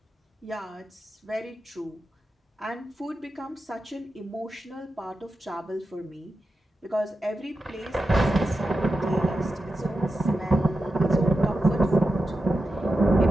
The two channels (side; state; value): both; normal; correlation 0.90